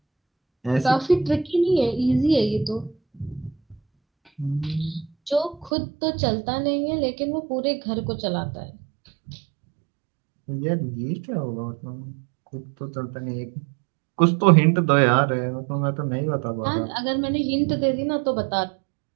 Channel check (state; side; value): drops out; left; at 5.7 s